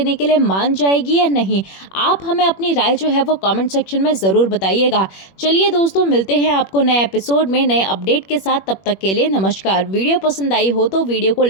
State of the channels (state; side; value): late; right; 21 ms